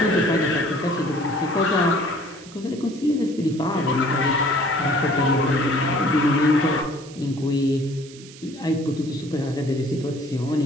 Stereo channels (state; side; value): noise; right; hiss, 20 dB below the sound